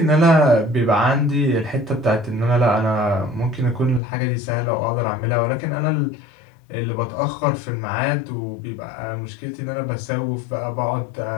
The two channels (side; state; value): right; drops out; at 4.0 s